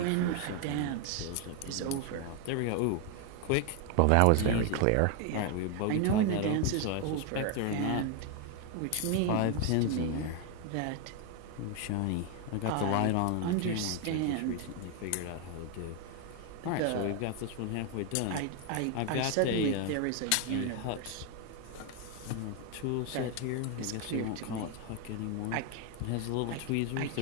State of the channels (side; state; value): both; different; correlation 0.01